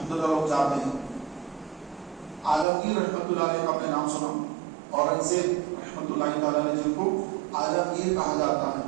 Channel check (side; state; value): left; drops out; at 2.7 s